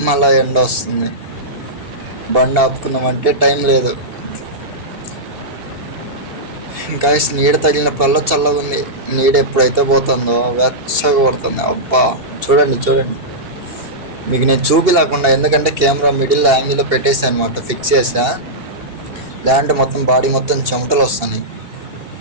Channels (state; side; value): late; left; 2.8 ms